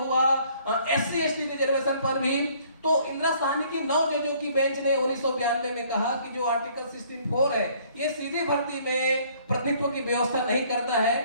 SC ST रिजर्वेशन पर भी। तो इंदिरा साहनी की 9 जजों की बेंच ने 1992 में कहा कि जो आर्टिकल 64 है, ये सीधी भर्ती में प्रतिनिधित्व की व्यवस्था नहीं करता है।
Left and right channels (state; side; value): inverted; both; correlation -0.60